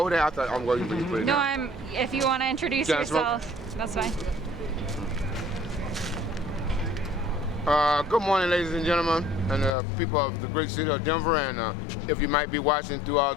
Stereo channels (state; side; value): drops out; right; at 9.7 s